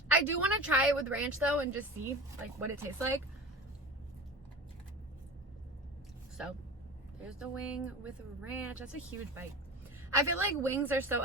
I do want to try it with ranch though and just see like what it tastes like. So there's the wing with ranch. That's a huge bite. I feel like wings are so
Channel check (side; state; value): both; normal; correlation 0.30